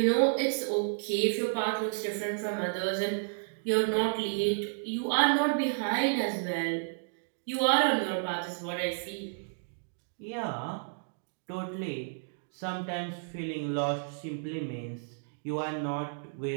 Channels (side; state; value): left; silent; digital silence